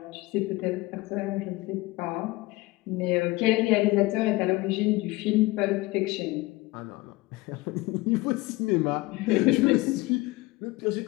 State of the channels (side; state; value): right; quieter; 21.1 dB